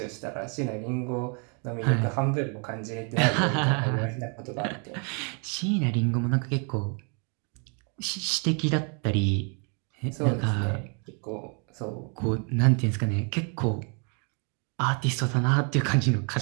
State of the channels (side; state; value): left; quieter; 37.6 dB